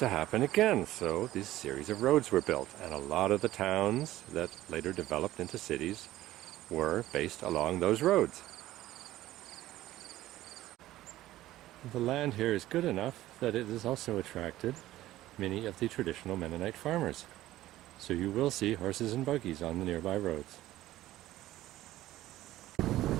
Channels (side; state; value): left; quieter; 15.2 dB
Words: happen again. So this series of roads were built, and a lot of the towns that later developed into cities were based along those roads. The land here is good enough that it has also attracted many of the traditional Mennonite farmers. So you will see horses and buggies on the nearby roads.